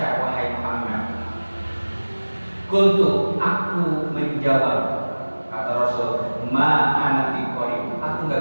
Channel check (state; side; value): inverted; both; correlation -1.00